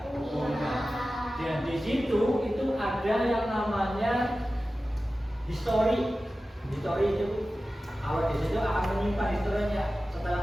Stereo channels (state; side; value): normal; both; correlation 0.95